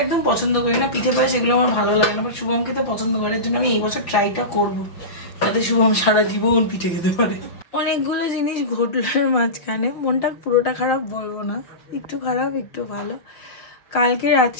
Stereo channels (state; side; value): late; right; 5.9 ms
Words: একদম পছন্দ করি না, পিঠে পায়েস এগুলো আমার ভালো লাগে না, বাট শুভম খেতে পছন্দ করার জন্য আমি এই বছর ট্রাইটা করবো, যাতে শুভম সারা জীবন পিঠে খেতে পারে। অনেকগুলো জিনিস ঘটলোর মাঝখানে, মনটা পুরোটা খারাপ বলবো না, একটু খারাপ একটু ভালো। কালকে